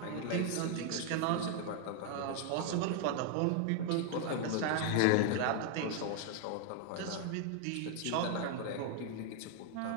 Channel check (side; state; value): both; different; correlation 0.00